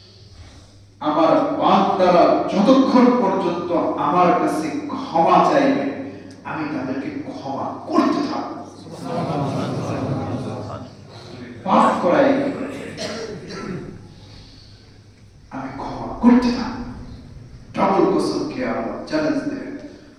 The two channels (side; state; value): both; identical; correlation 1.00